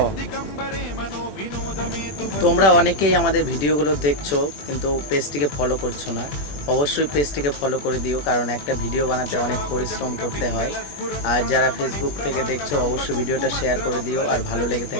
তোমরা অনেকেই আমাদের ভিডিওগুলো দেখছো কিন্তু পেজটিকে ফলো করছো না। অবশ্যই পেজটিকে ফলো করে দিও, কারণ একটা ভিডিও বানাতে অনেক পরিশ্রম করতে হয়। আর যারা ফেসবুক থেকে দেখছো অবশ্যই ভিডিওটা শেয়ার করে দিও, আর ভালো লেগে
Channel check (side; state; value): right; late; 21 ms